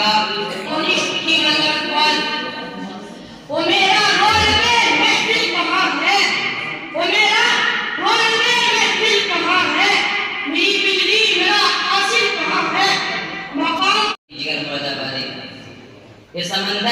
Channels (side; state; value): both; identical; correlation 1.00